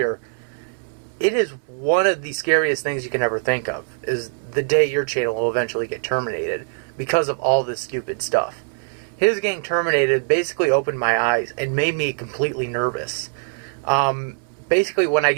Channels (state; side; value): silent; left; digital silence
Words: it is one of the scariest things you can ever think of, is the day your channel will eventually get terminated because of all this stupid stuff. His getting terminated basically opened my eyes and made me completely nervous. Basically, when I